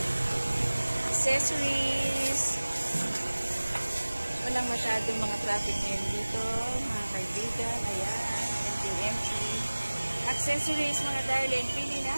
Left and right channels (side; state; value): both; inverted; correlation -1.00